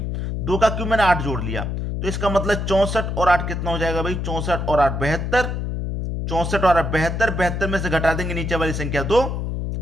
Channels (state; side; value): noise; left; hum, 3 dB below the sound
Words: 2 का क्यूब मैंने 8 जोड़ लिया, तो इसका मतलब 64 और 8 कितना हो जाएगा भाई? 64 और 8 72। 64 और 8 72। 72 में से घटा देंगे नीचे वाली संख्या 2,